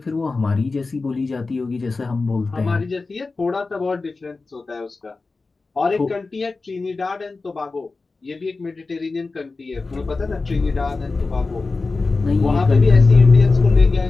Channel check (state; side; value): quieter; right; 3.8 dB